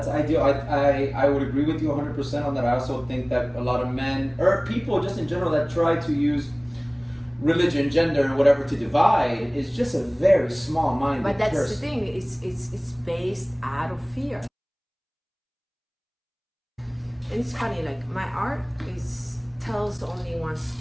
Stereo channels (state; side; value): identical; both; correlation 1.00